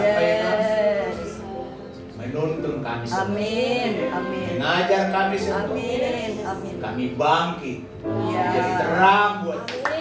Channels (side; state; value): both; identical; correlation 1.00